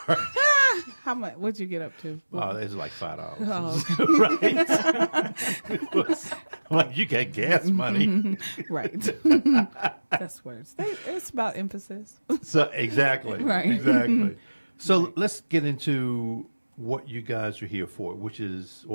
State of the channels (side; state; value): both; inverted; correlation -1.00